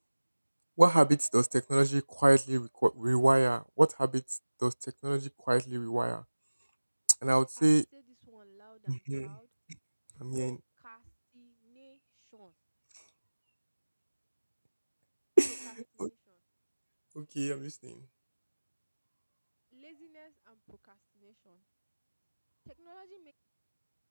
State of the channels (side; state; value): both; inverted; correlation -1.00